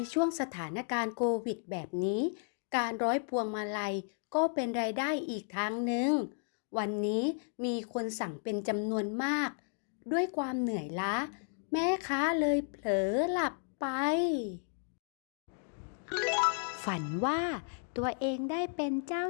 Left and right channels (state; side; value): silent; right; 55 dB below the other